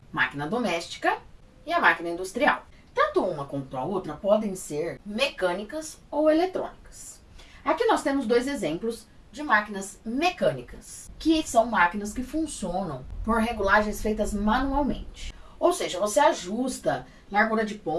máquina doméstica e a máquina industrial. Tanto uma quanto a outra podem ser mecânicas ou eletrônicas. Aqui nós temos dois exemplos de máquinas mecânicas, que são máquinas que funcionam por regulagens feitas manualmente. Ou seja, você ajusta largura de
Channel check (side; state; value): both; identical; correlation 1.00